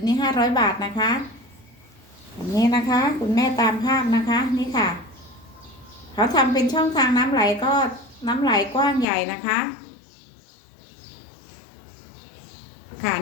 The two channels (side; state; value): right; drops out; at 9.1 s